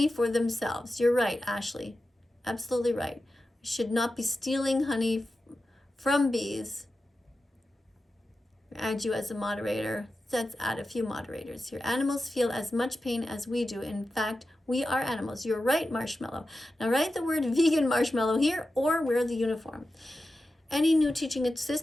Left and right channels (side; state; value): both; normal; correlation 0.92